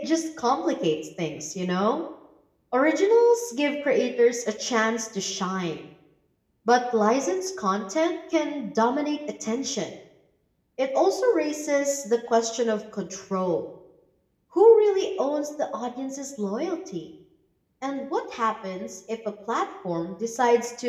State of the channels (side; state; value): both; identical; correlation 1.00